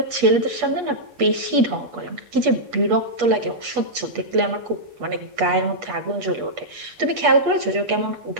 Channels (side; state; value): left; late; 8.3 ms